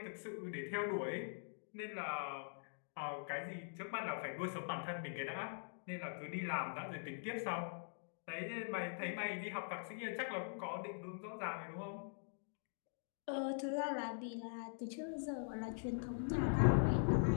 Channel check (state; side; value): silent; right; digital silence